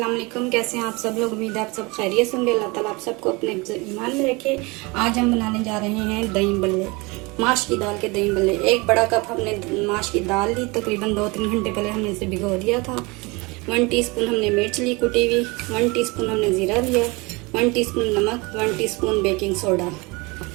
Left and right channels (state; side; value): quieter; left; 25.9 dB